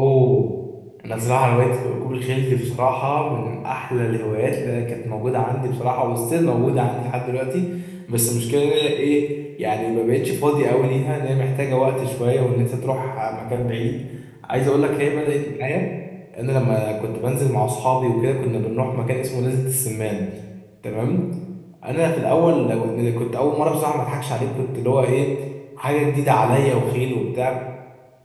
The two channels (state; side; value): identical; both; correlation 1.00